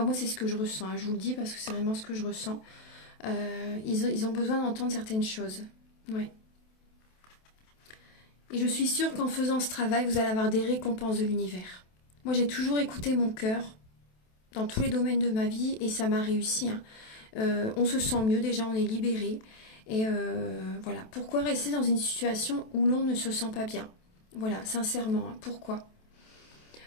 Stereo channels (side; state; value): right; late; 27 ms